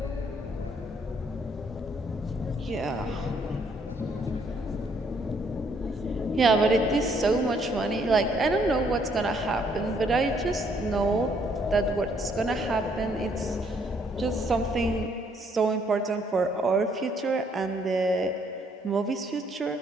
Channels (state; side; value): normal; both; correlation 0.68